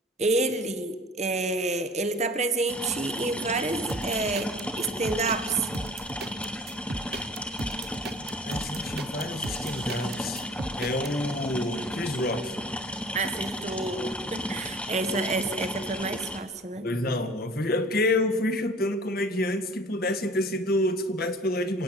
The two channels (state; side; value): normal; both; correlation 0.46